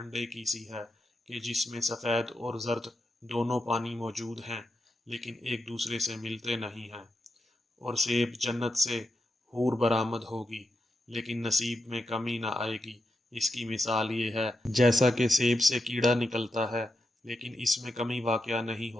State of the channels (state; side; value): normal; both; correlation 0.86